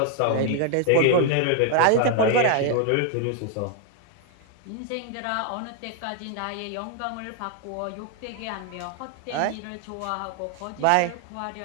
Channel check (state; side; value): different; both; correlation 0.00